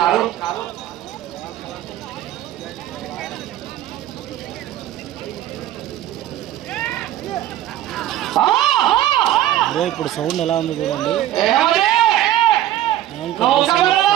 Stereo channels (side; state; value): left; quieter; 13.2 dB